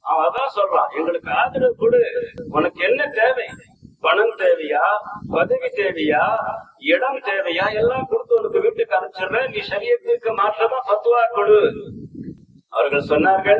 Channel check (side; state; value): both; identical; correlation 1.00